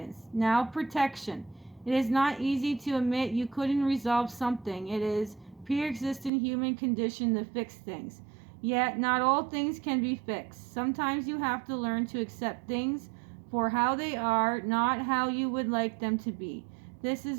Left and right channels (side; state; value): left; drops out; at 6.3 s